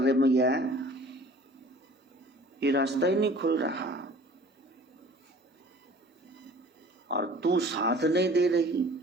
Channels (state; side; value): normal; both; correlation 0.48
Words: मैया, ये रास्ता ही नहीं खुल रहा और तू साथ नहीं दे रही,